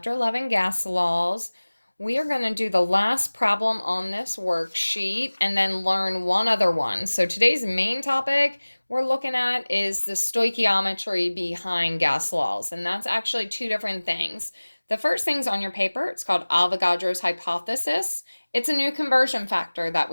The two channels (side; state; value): both; inverted; correlation -1.00